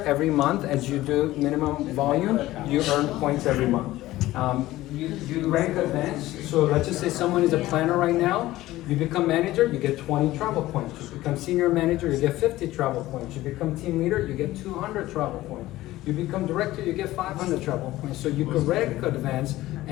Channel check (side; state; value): right; quieter; 16.4 dB